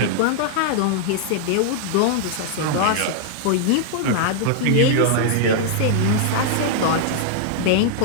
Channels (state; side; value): different; both; correlation -0.01